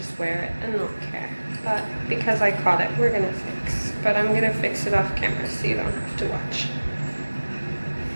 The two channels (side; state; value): both; inverted; correlation -1.00